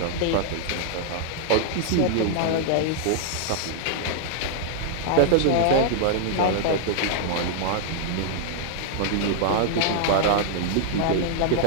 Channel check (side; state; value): both; different; correlation -0.01